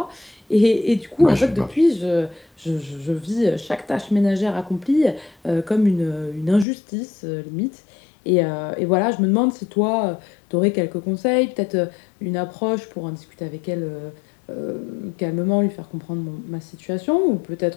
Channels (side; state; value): right; drops out; at 6.7 s